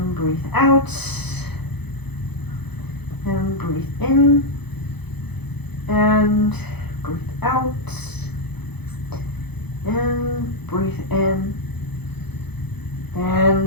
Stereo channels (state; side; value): late; right; 0.98 ms